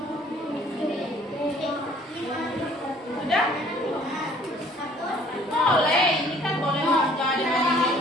Sudah? Boleh, ini kan boleh jadi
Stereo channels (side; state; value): both; normal; correlation 0.57